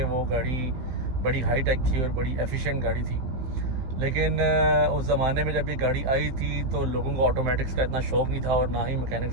वो गाड़ी बड़ी हाई टेक थी और बड़ी एफिशिएंट गाड़ी थी। लेकिन उस ज़माने में जब ये गाड़ी आई थी तो लोगों को ऑटोमेटिक्स का इतना शौक़ नहीं था और ना ही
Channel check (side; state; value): left; late; 16 ms